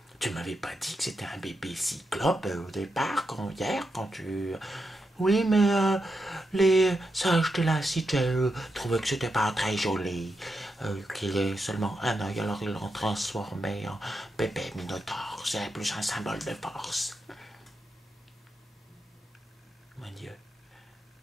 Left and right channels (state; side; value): normal; both; correlation 0.85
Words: tu m'avais pas dit que c'était un bébé cyclope au départ, hier, quand tu... Oui, mais les sages de la cité trouvaient que c'était pas très joli, qu'il ait seulement un œil, alors ils l'ont transformé en bébé minotaure. C'est plus un symbole de force. Mon Dieu,